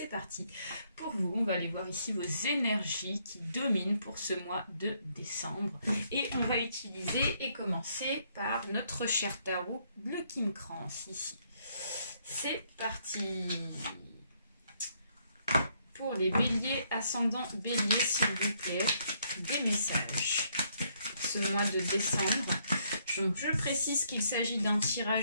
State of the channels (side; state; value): both; inverted; correlation -0.71